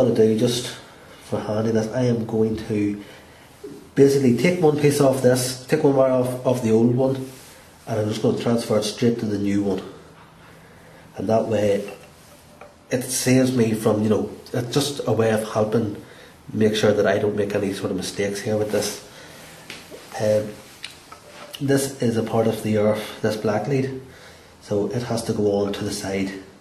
to do, just for handiness, I am going to basically take one piece off this, take one wire off the old one, and I'm just going to transfer it straight to the new one. And that way it saves me from, it's just a way of helping make sure that I don't make any sort of mistakes here with this. This is a part of the earth, this black lead, so it has to go on to the side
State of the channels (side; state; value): both; identical; correlation 1.00